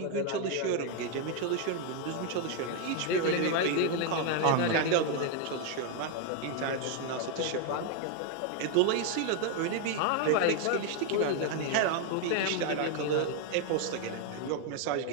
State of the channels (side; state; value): both; different; correlation 0.01